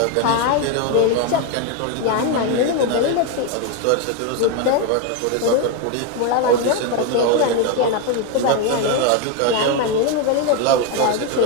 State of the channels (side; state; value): both; different; correlation 0.02